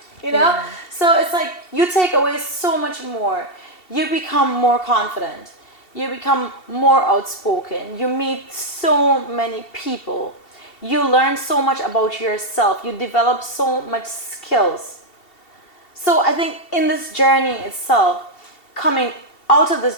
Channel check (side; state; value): right; late; 2.7 ms